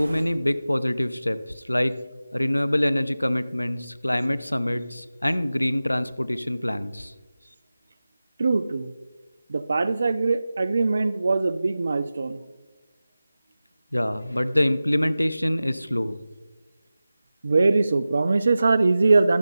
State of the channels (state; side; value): inverted; both; correlation -0.96